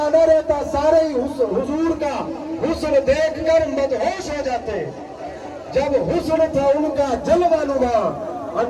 نہ رہتا، سارے ہی حضور کا حسن دیکھ کر مدہوش ہو جاتے۔ جب حسن تھا ان کا جلوہ نما،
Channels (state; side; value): identical; both; correlation 1.00